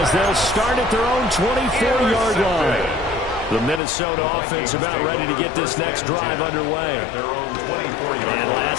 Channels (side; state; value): right; drops out; at 3.8 s